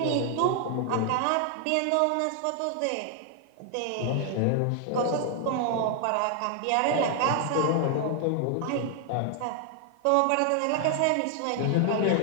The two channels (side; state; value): both; different; correlation 0.00